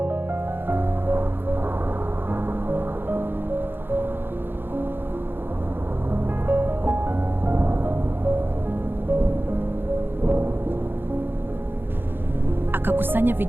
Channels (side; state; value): left; late; 0.10 ms